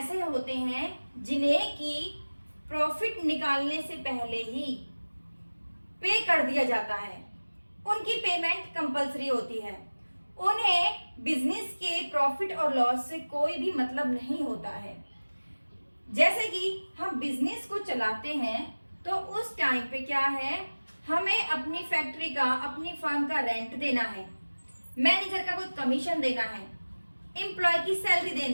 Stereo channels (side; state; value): both; inverted; correlation -1.00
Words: होते हैं जिन्हें कि प्रॉफिट निकालने से पहले ही पे कर दिया जाता है, उनकी पेमेंट कंपलसरी होती है, उन्हें बिजनेस के प्रॉफिट और लॉस से कोई भी मतलब नहीं होता है। जैसे कि हम बिजनेस को चलाते हैं तो उस टाइम पे क्या है, हमें अपनी फैक्ट्री का, अपनी फर्म का रेंट देना है, मैनेजर का कुछ कमीशन देना है, एम्प्लॉय की सैलरी